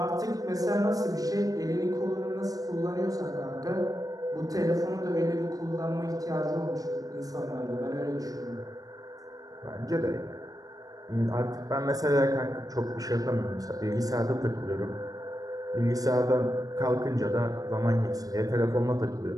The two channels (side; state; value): left; late; 0.18 ms